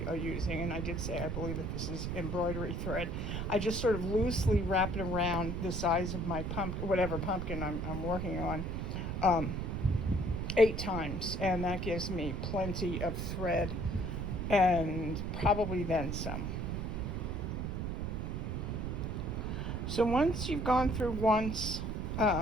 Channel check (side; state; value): right; noise; rumble, 2 dB below the sound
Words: using, and I did say I believe that this is embroidery thread, I just sort of loosely wrap it around the size of my pumpkin, whatever pumpkin I'm working on, 8 times, and that gives me plenty of thread and probably then some. So once you've gone through once